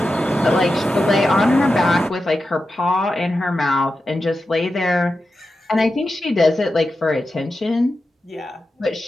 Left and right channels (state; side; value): normal; both; correlation 0.91